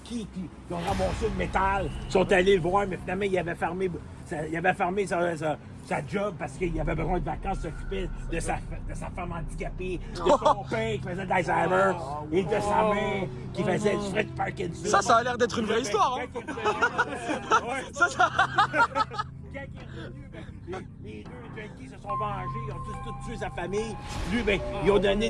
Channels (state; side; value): identical; both; correlation 1.00